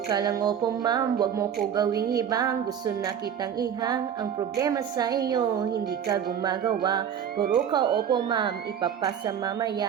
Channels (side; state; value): left; quieter; 8.6 dB